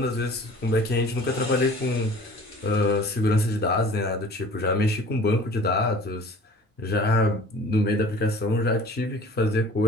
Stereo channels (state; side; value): normal; both; correlation 0.46